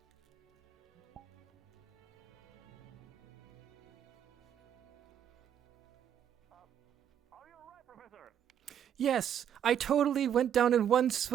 Professor. Yes, I totally went down in one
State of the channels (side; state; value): left; quieter; 9.4 dB